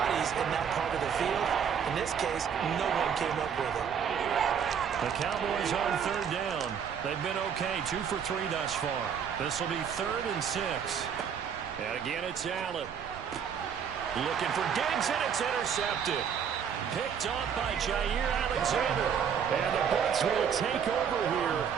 in that part of the field. In this case, no one came up with it. The Cowboys on 3rd down. They've been okay, 2 for 3 thus far. This will be 3rd and 6. And again, it's Allen. Looking for Diggs, and it's intercepted. Picked off by Jair Alexander. And the Bucs will take over here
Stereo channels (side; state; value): left; quieter; 7.6 dB